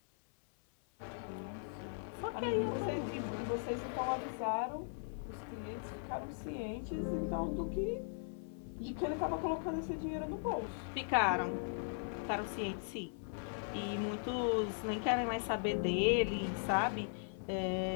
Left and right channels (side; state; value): right; silent; 52 dB below the other